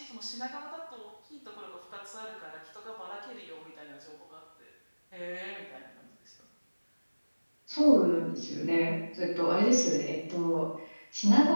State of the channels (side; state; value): both; inverted; correlation -1.00